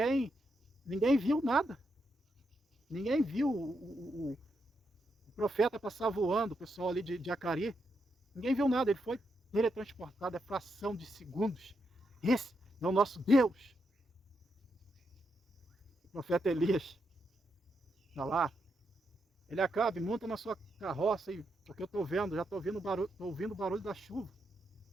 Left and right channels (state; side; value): normal; both; correlation 0.82